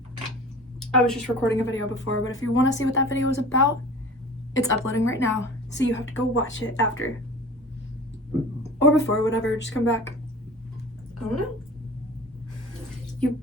I was just recording a video before, but if you want to see what that video was about, it's uploading right now, so you have to go watch it after. Or before, whatever, just come back. I don't know. You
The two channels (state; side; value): normal; both; correlation 0.40